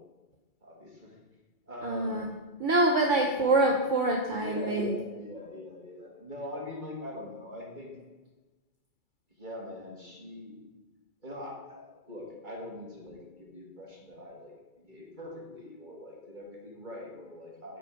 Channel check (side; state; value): right; late; 2.3 ms